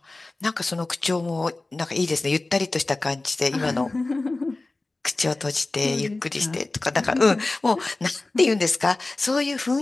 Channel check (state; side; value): quieter; right; 3.1 dB